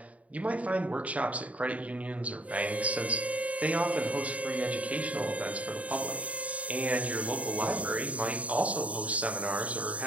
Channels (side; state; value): left; late; 0.068 ms